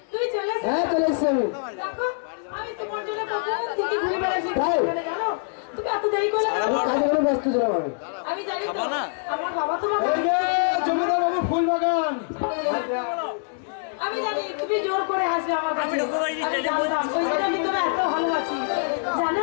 তুই চলে এসে হ্যাঁ চলে এসছি আমি দেখো আমি তোমার জন্য কখন থেকে ঘুরে বেড়াচ্ছি জানো তুমি এত দেরি করে কাজে করে ব্যস্ত ছিলাম আমি জানি তো আমার বাবা তোমাকে জমিদার বাবু ফুল বাগান আমি জানি তুমি জোর করে হাসবে আমার কাছে আমি জানতাম ওই জন্য আমি তোমার এত ভালোবাসি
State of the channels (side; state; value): right; silent; digital silence